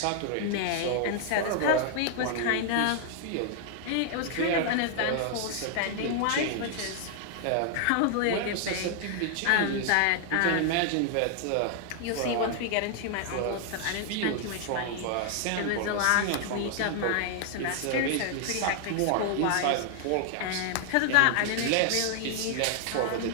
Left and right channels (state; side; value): different; both; correlation 0.00